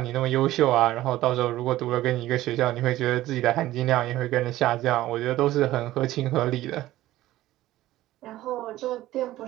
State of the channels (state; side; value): quieter; left; 15.5 dB